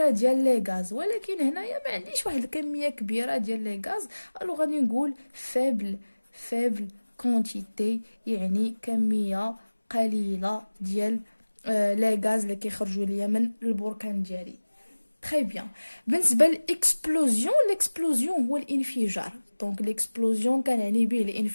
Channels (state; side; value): inverted; both; correlation -1.00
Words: ديال لي غاز. ولكن هنايا ما عنديش واحد الكميه كبيره ديال لي غاز، الو غادي نقول فيبل كونتيتي، يعني كميه قليله ديال لي غاز اللي كيخرجوا ليا من البركان ديالي. تري بيان. بالنسبه للاكسبلوزيون هو الانفجار. دونك ليكسبلوزيون كنعني به